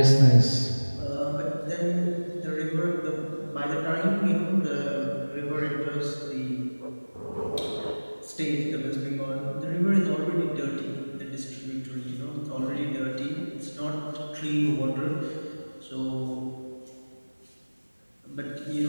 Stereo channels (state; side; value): inverted; both; correlation -1.00